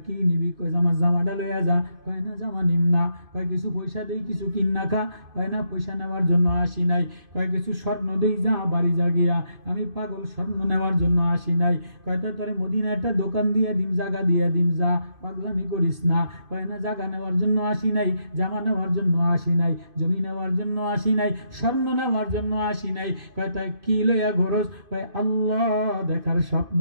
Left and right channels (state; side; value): late; left; 2.5 ms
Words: কি নিবি? কয় আমার জামাটা লইয়া যা। কয় না জামা নিম না। কয় কিছু পয়সা দেই, কিছু কিন্না খা। কয় না পয়সা নেওয়ার জন্য আসি নাই। কয় কিছু স্বর্ণ দেই, যা বাড়ি যা গিয়া, আমি পাগল স্বর্ণ নেওয়ার জন্য আসি নাই। কয় তাই তোরে মদিনা একটা দোকান দিয়ে দিম, জায়গা দিয়ে দিম, যা, পাগলামি করিস না। কয় না জায়গা নেওয়ার জন্য আসি নাই, জামা নেওয়ার জন্য আসি নাই, জমি নেওয়ার জন্য আসি নাই, স্বর্ণ নেওয়ার জন্য আসি নাই। কয় তাই কি লইয়া ঘরস? কয় আল্লাহ দেখার স্বপ্ন